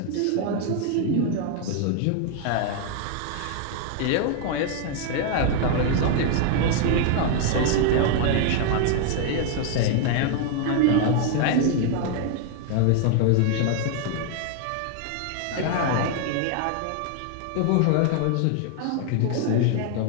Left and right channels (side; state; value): both; different; correlation 0.00